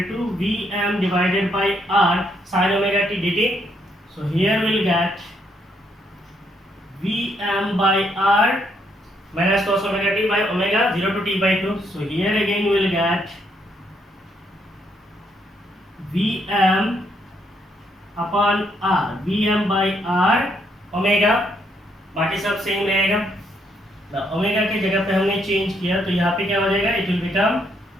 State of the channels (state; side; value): normal; both; correlation 0.73